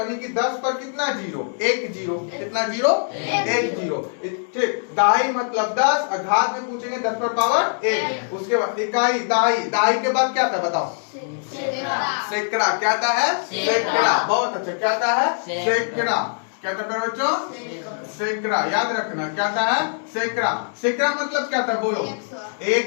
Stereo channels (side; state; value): right; silent; digital silence